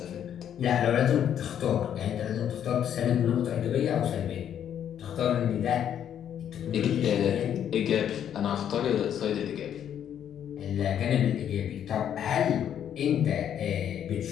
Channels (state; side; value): quieter; right; 9.6 dB